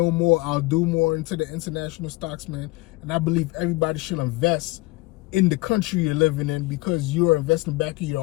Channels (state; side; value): quieter; right; 21.7 dB